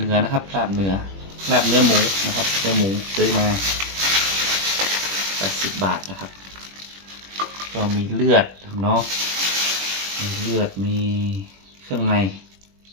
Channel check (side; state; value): left; late; 21 ms